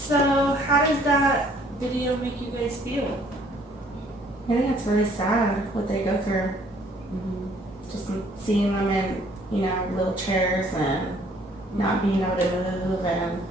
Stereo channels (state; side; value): normal; both; correlation 0.60